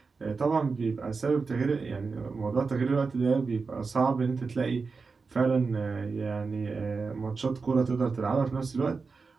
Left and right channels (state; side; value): quieter; left; 4.6 dB